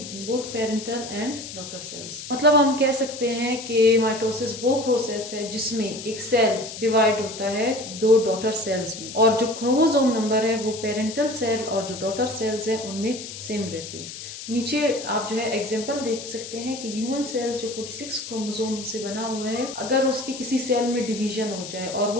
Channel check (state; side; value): noise; left; hiss, 11 dB below the sound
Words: in both parental and daughter cells. मतलब हम कह सकते हैं कि माइटोसिस वो प्रोसेस है जिसमें एक सेल डिवाइड होता है दो डॉटर सेल्स में और जो क्रोमोसोम नंबर है वो पेरेंटल सेल और जो डॉटर सेल्स है उनमें सेम रहती है। नीचे आप जो है एग्जांपल देख सकते हैं कि ह्यूमन सेल्स जो 46 क्रोमोसोम से बना हुआ है, अगर उसके किसी सेल में डिवीजन हो जाए और